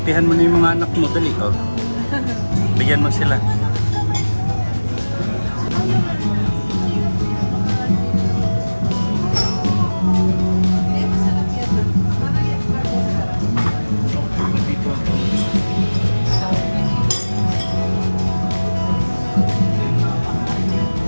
mo na yung mga anak mo. Dali, oh. Bigyan mo sila.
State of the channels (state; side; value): inverted; both; correlation -1.00